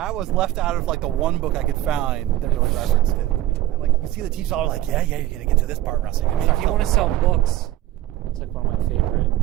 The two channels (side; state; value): left; quieter; 14.4 dB